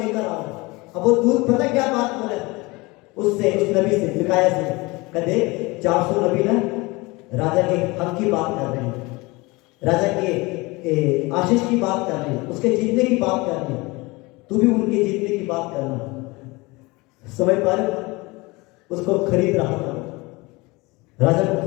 आओ। अब वो दूत पता क्या बात बोले उससे, उस नबी से, मिकाया से, कहते 400 नबी ना राजा के हक की बात कर रहे हैं, राजा के आशीष की बात कर रहे हैं, उसके जीतने की बात कर रहे हैं, तू भी उनके जीतने की बात करना। समझ पा रहे? उसको खरीद रहा था, राजा को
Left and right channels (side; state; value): right; quieter; 23.9 dB